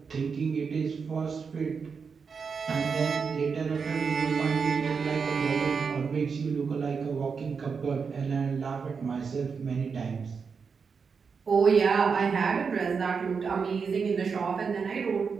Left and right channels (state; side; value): quieter; left; 5.6 dB